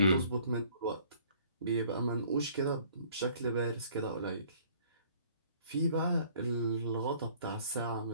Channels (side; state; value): both; inverted; correlation -0.57